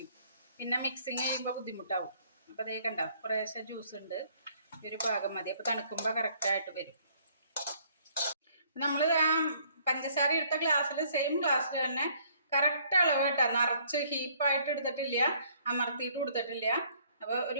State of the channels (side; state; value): both; inverted; correlation -0.62